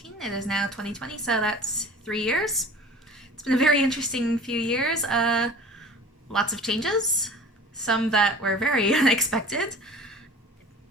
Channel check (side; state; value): both; normal; correlation 0.41